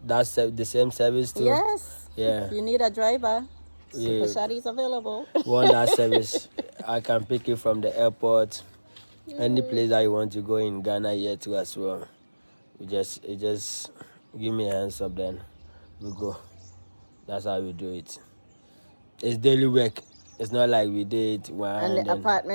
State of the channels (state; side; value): inverted; both; correlation -1.00